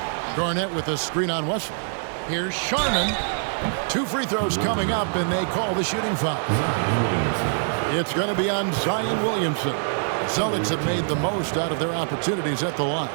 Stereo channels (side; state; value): left; silent; 62 dB below the other